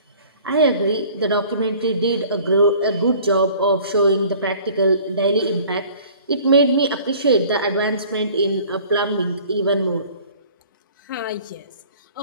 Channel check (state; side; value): inverted; both; correlation -0.50